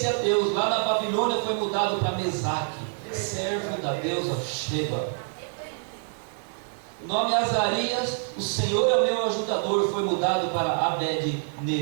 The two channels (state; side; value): silent; left; 61 dB below the other